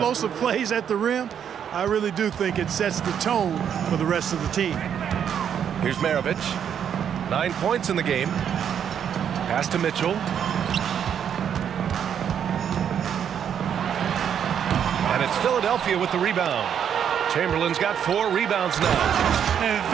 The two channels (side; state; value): left; quieter; 8.5 dB